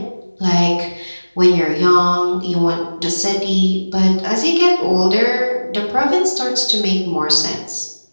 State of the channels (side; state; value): both; inverted; correlation -1.00